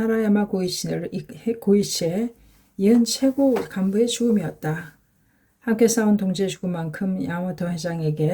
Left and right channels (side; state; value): both; identical; correlation 1.00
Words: 고이치의 이은 최고 간부의 죽음이었다. 함께 싸운 동지의 죽음만큼 야마모토